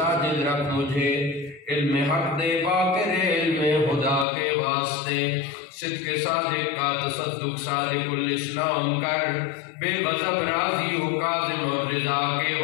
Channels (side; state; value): right; drops out; at 4.2 s